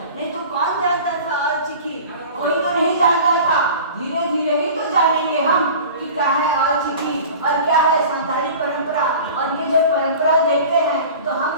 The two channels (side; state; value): both; inverted; correlation -0.39